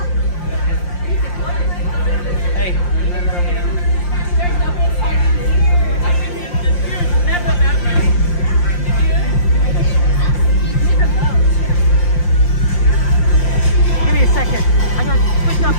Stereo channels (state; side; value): late; right; 5.7 ms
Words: Hey. Give me a second. I gotta switch out